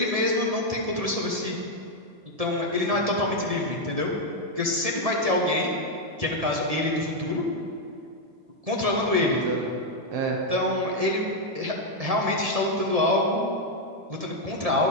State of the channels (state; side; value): late; left; 1.7 ms